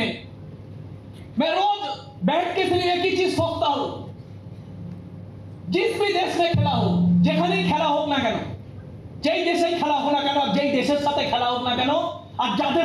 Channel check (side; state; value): both; identical; correlation 1.00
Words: मैं रोज बैठ के सिर्फ एक ही चीज सोचता हूं, जिस भी देश में खेला हो, যেখানেই খেলা হোক না কেন, যেই দেশেই খেলা হোক না কেন, যেই দেশের সাথে খেলা হোক না কেন, আর